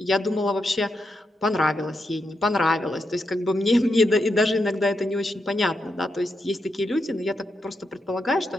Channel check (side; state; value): both; normal; correlation 0.84